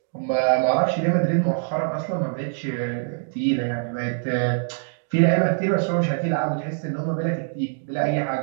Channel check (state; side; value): silent; left; digital silence